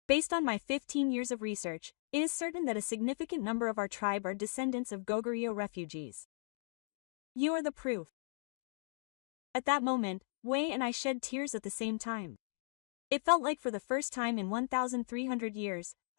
Based on my 15 years of research, it is certain that a significant number of our tribe are descendants of Goguryeo refugees. You are the proof. At that moment, Wei and I shed tears at the same time. It felt like for the first time in 1,300 years,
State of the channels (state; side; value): silent; right; digital silence